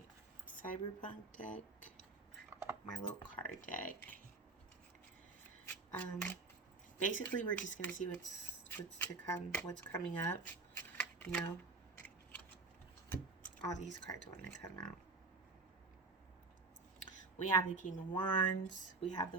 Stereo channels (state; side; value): quieter; left; 3.8 dB